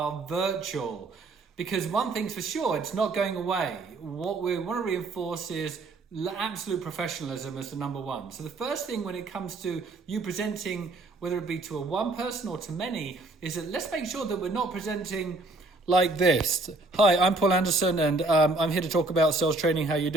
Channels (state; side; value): quieter; left; 3.1 dB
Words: virtual? Because one thing's for sure, it's not going away. What we want to reinforce is absolute professionalism as the number one. So the first thing when it comes to you presenting, whether it be to a one person or to many, is that let's make sure that we're not presenting like this. Hi, I'm Paul Anderson and I'm here to talk about sales training. How you